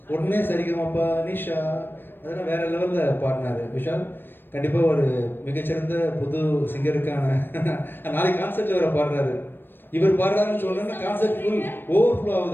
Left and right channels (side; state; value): right; late; 0.097 ms